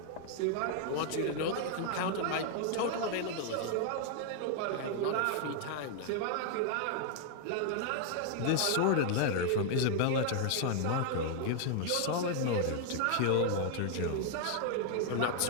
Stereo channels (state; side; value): different; both; correlation 0.00